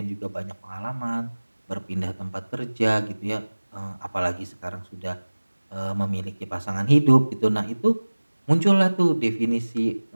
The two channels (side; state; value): both; inverted; correlation -1.00